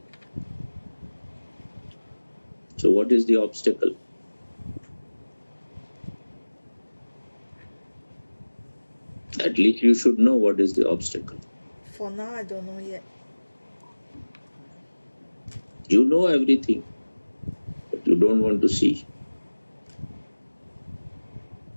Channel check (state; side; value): inverted; both; correlation -1.00